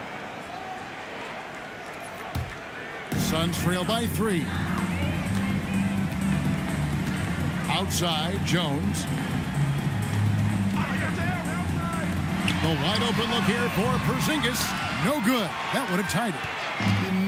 Suns trail by 3. Outside, Jones. The wide open look here for Porzingis. No good. That would have tied it. You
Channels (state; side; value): identical; both; correlation 1.00